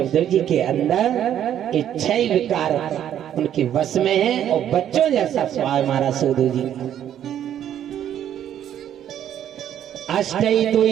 जी के अंदर ये 6 विकार उनके वश में है और बच्चों जैसा स्वभाव हमारा सुखदेव जी का। अष्टई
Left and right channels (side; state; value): left; quieter; 10.4 dB